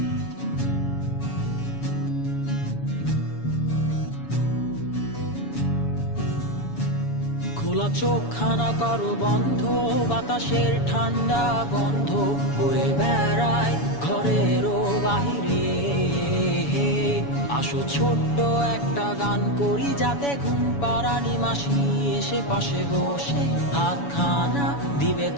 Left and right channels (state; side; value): late; right; 7.1 ms